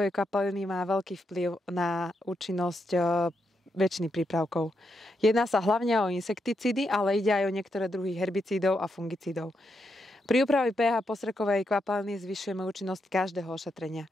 kvapaliny má veľký vplyv na účinnosť väčšiny prípravkov. Jedná sa hlavne o insekticídy, ale ide aj o niektoré druhy herbicídov a fungicídov. Pri úprave pH postrekovej kvapaliny zvyšujeme účinnosť každého ošetrenia.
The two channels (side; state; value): both; normal; correlation 0.82